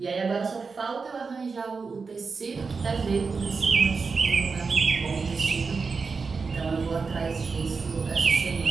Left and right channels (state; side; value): quieter; left; 4.8 dB